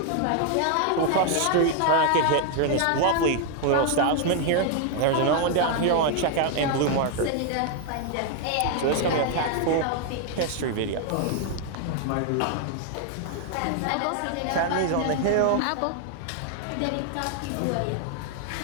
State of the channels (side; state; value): both; different; correlation 0.00